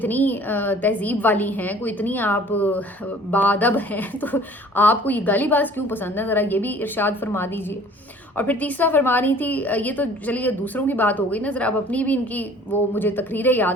तहजीब वाली हैं, कोई इतनी आप बाअदब हैं, तो आपको ये गालीबाज क्यों पसंद है, ज़रा ये भी इरशाद फरमा दीजिए। और फिर तीसरा फरमा रही थी, ये तो चलिए दूसरों की बात हो गई ना, ज़रा अब अपनी भी इनकी वो मुझे तकरीरें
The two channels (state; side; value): normal; both; correlation 0.51